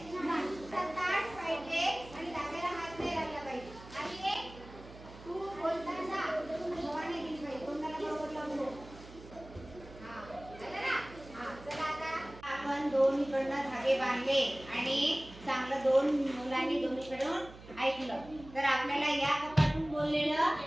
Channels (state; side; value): noise; right; hum, 17 dB below the sound